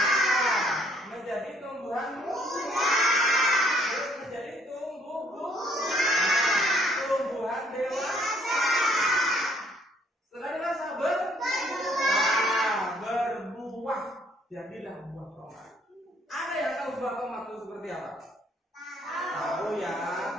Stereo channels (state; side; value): normal; both; correlation 0.64